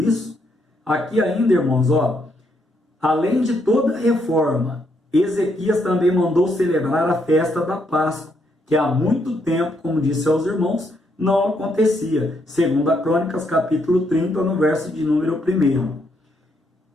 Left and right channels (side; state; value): both; normal; correlation 0.75